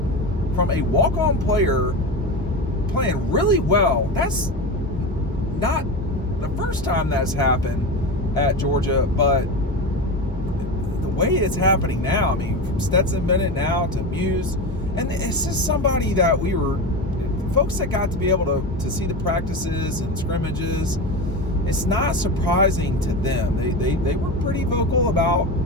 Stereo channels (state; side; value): normal; both; correlation 0.22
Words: from a walk-on player playing really well. That's not the first time that's happened at Georgia, but the way it's happening now, I mean, from Stetson Bennett now to Muse, and it's just somebody that folks that got to be able to see the practices and scrimmages. It's not surprising to them. They were pretty vocal about,